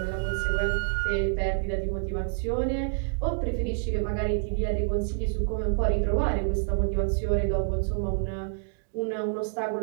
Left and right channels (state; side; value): silent; left; digital silence